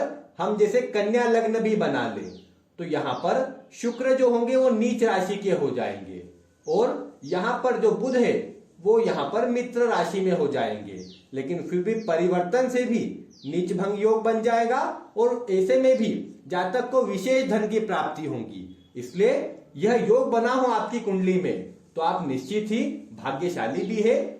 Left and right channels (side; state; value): both; identical; correlation 1.00